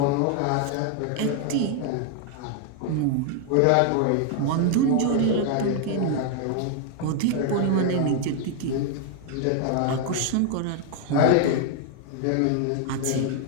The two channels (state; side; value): different; both; correlation 0.00